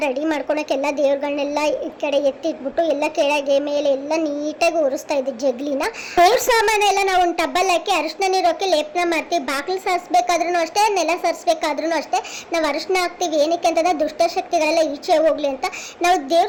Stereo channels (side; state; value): both; identical; correlation 1.00